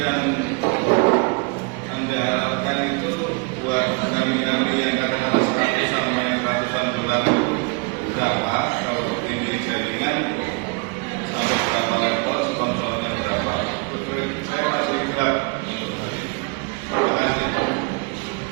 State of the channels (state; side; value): quieter; left; 32.1 dB